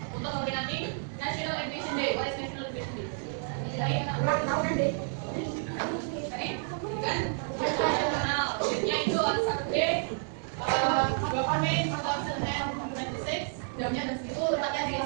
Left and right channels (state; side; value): silent; left; 57 dB below the other